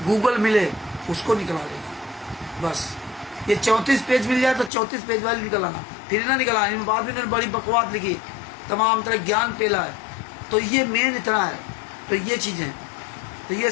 गूगल मिले उसको निकला लेना बस। ये 34 पेज मिल जाए तो 34 पेज वाली निकल आना, फिर ना निकल आना। बाद में इन्होंने बड़ी बकवास लिखी, तमाम तरह ज्ञान पेला है। तो ये मेन इतना है। तो ये चीज़ें, तो ये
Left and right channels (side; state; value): right; drops out; at 4.7 s